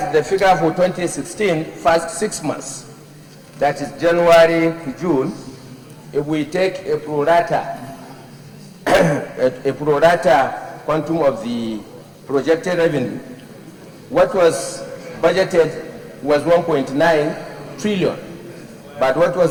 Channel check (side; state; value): both; identical; correlation 1.00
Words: the figure for 2016, first 6 months, that is January to June, if we take a pro rata, quantum of the projected revenue, what was budgeted was 1.9 trillion. But what